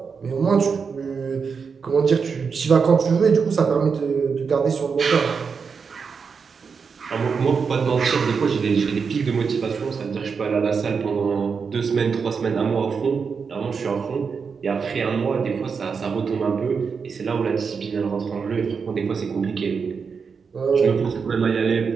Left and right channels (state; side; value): quieter; left; 5.7 dB